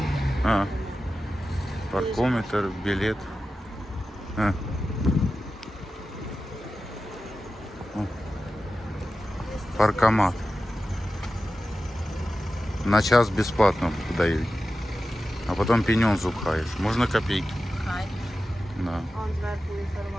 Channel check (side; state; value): both; normal; correlation 0.93